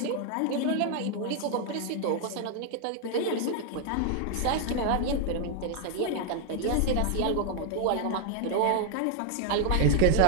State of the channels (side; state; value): both; different; correlation 0.00